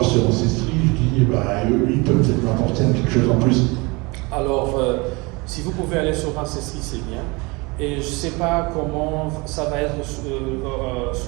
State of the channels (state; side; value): quieter; left; 26.3 dB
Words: sur Ancestry, je dis eux, ils peuvent peut-être m'apporter quelque chose en plus? Alors, si vous pouvez aller sur Ancestry, c'est bien. Et je ne sais pas comment ça va être